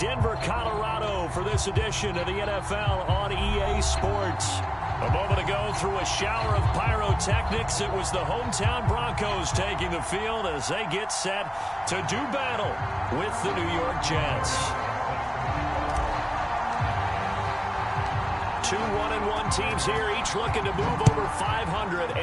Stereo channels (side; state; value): both; identical; correlation 1.00